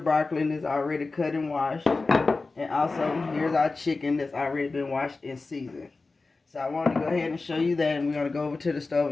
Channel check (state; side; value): quieter; right; 3.7 dB